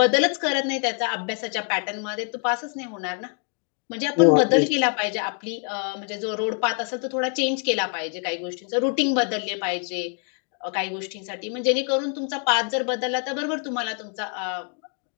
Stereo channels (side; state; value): right; quieter; 39.7 dB